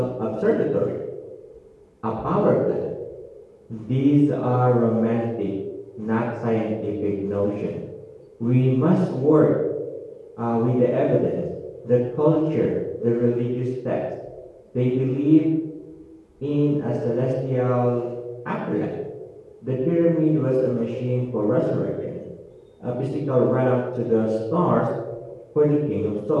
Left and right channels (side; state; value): both; identical; correlation 1.00